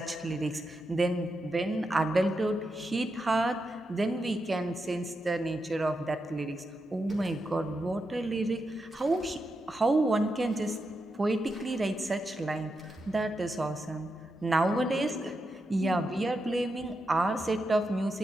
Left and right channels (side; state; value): both; normal; correlation 0.86